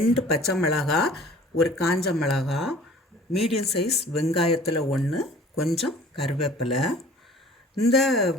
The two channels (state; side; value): normal; both; correlation 0.48